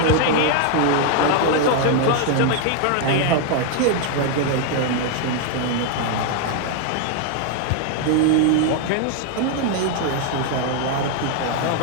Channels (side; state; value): both; different; correlation 0.00